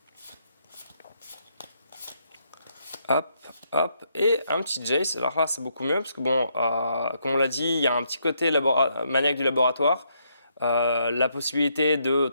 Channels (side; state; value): both; inverted; correlation -0.76